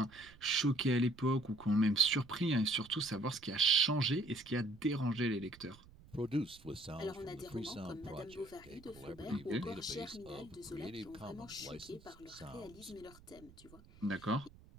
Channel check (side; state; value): right; noise; rumble, 22 dB below the sound